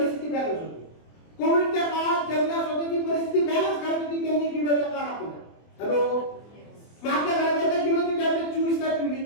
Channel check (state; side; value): late; right; 24 ms